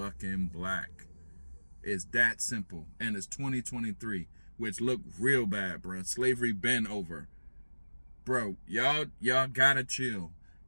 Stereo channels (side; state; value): both; inverted; correlation -1.00